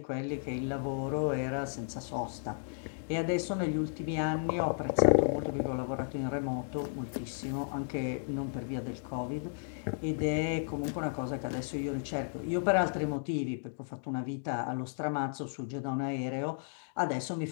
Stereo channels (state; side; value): silent; right; digital silence